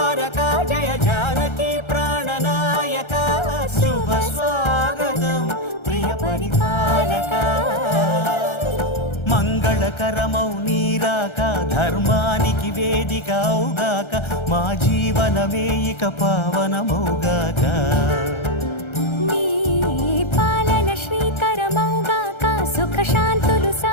పాలక జయ జానకి ప్రాణనాయక శుభ స్వాగతం ప్రియ పరిపాలక మంగళకరమౌ నీరాక ధర్మానికి వేదిక అవుగాక మా జీవనమే ఇక పావనమౌగాక నీ పాలన శ్రీకరమౌగాక సుఖ శాంతులు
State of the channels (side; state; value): right; late; 1.3 ms